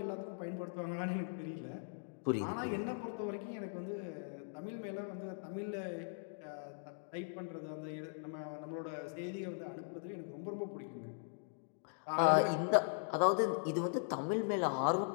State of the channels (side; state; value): right; silent; digital silence